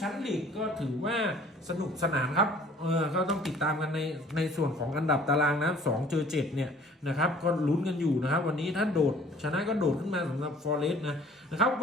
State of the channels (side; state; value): both; normal; correlation 0.52